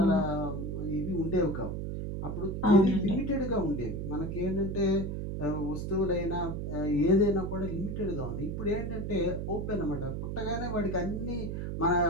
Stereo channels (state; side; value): noise; right; hum, 4 dB below the sound